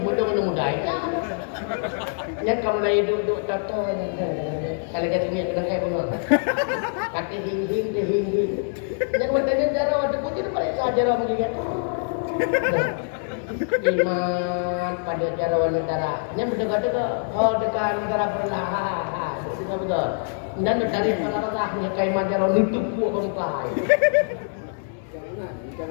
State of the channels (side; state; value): right; silent; digital silence